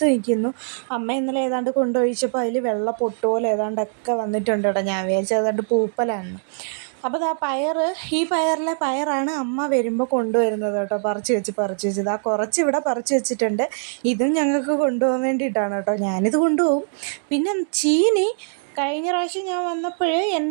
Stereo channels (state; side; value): silent; left; digital silence